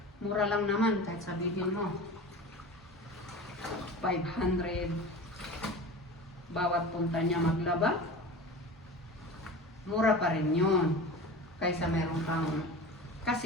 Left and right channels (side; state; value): both; normal; correlation 0.34